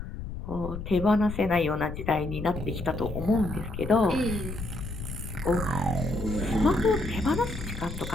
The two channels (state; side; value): noise; left; rumble, 8 dB below the sound